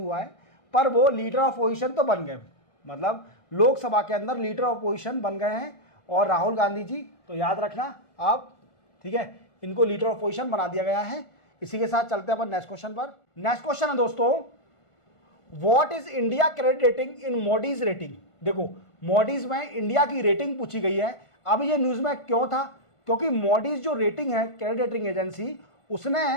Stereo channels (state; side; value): late; right; 1.5 ms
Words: है, पर वो लीडर ऑफ अपोजिशन तो बन गए। मतलब लोकसभा के अंदर लीडर ऑफ अपोजिशन बन गए हैं। और राहुल गांधी जी, तो याद रखना आप, ठीक है, इनको लीडर ऑफ अपोजिशन बना दिया गया है। इसी के साथ चलते हैं अपन नेक्स्ट क्वेश्चन पर। नेक्स्ट क्वेश्चन है दोस्तों, what is India credit rating in Modi's rating. देखो, मोडीज में इंडिया की रेटिंग पूछी गई है। अब ये न्यूज में क्यों था? क्योंकि मोडीज जो रेटिंग है, क्रेडिट रेटिंग एजेंसी, उसने